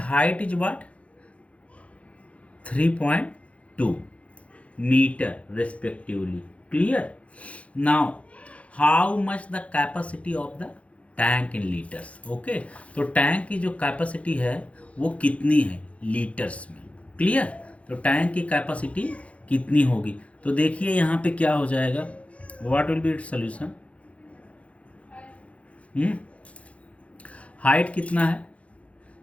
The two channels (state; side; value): late; right; 0.064 ms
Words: is what 3.2 metre respectively, clear. Now how much the capacity of the tank in litres. Okay, तो tank की जो capacity है वो कितनी है लीटर्स में. क्लियर. तो टैंक की कैपेसिटी कितनी होगी. तो देखिए यहाँ पे क्या हो जाएगा. What will be its solution. Height कितना है